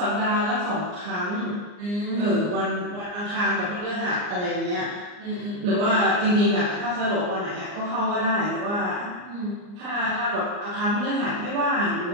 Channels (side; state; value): left; late; 39 ms